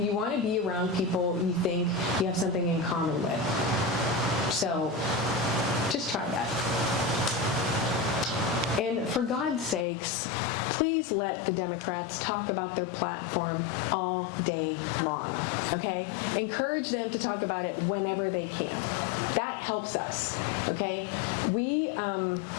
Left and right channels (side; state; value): right; drops out; at 9.9 s